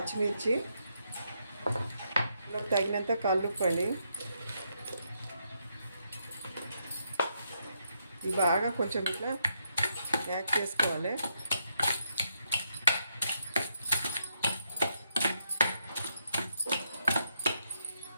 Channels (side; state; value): both; inverted; correlation -0.79